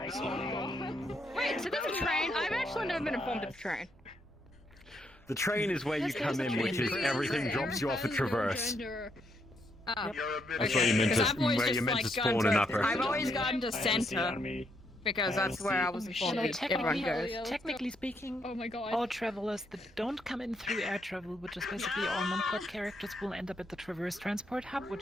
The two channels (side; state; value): both; normal; correlation 0.76